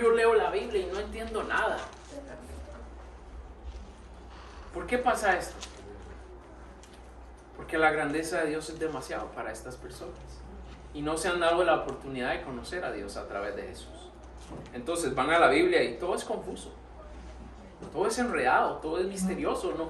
leo la Biblia y no entiendo nada. ¿Por qué pasa esto? Porque la grandeza de Dios es demasiado para estas personas. Y no se han dado la oportunidad de conocer a Dios a través de Jesús. Entonces van a la Biblia y todo es confuso. Todo es enredado, todo es misterioso.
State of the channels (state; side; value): identical; both; correlation 1.00